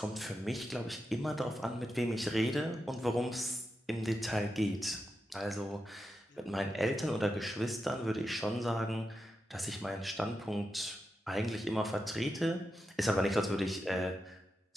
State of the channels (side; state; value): both; normal; correlation 0.88